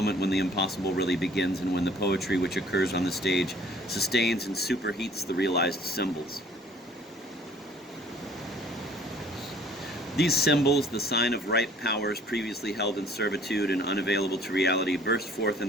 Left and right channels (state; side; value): normal; both; correlation 0.54